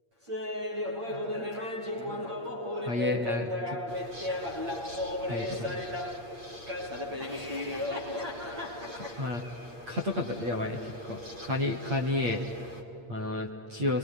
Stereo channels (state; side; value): late; left; 8.6 ms